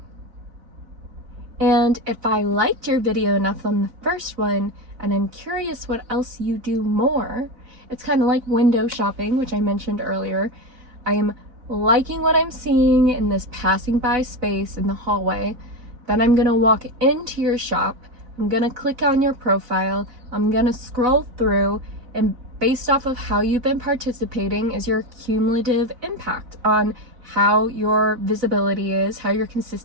And if I liked your video enough on the first one, and I'm curious what else you do more, it's kind of like window shopping, which I mentioned earlier. I am liking what I'm seeing in this passing by space in the hallway. Then I'm gonna walk into your shop. I'm gonna click on your profile. I'm gonna scroll through, and based off of how you've been participating is your cumulative impact on how your visibility is, how your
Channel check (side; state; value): left; late; 4.0 ms